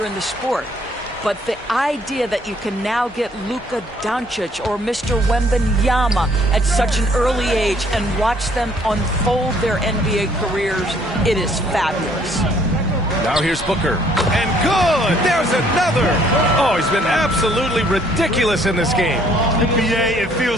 in the sport. But the idea that you can now get Luka Doncic or Mr. Wembanyama at such an early age and watch them unfold their NBA careers, it is fabulous. Now here's Booker. And good! There's another! Oh, he's been absolutely ridiculous in this game. NBA, it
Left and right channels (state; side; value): normal; both; correlation 0.62